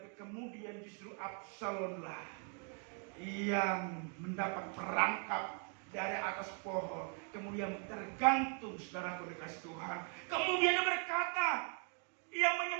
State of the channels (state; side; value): quieter; left; 38.7 dB